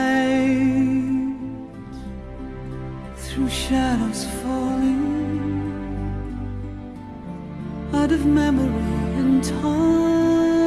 through shadows falling out of memory and time.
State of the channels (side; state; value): both; identical; correlation 1.00